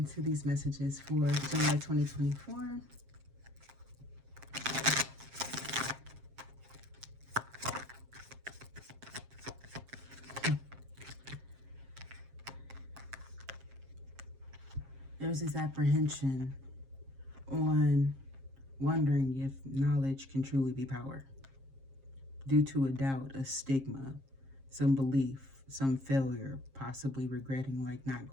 these messages for July 2024. There's this apprehension on wondering if knowledge can truly be power, due to a doubt, a stigma, some belief, some failure, possibly regretting like not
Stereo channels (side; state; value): left; late; 7.5 ms